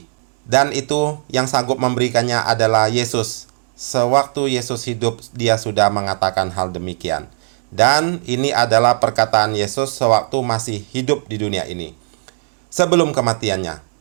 Dan itu yang sanggup memberikannya adalah Yesus. Sewaktu Yesus hidup, dia sudah mengatakan hal demikian. Dan ini adalah perkataan Yesus sewaktu masih hidup di dunia ini, sebelum kematiannya,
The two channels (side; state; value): left; silent; digital silence